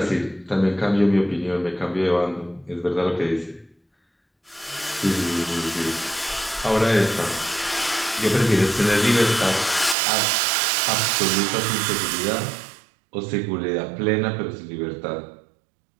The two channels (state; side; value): drops out; left; at 10.0 s